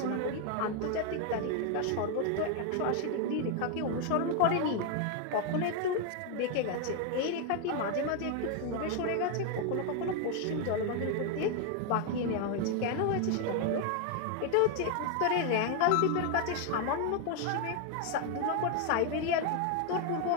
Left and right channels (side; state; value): both; different; correlation 0.01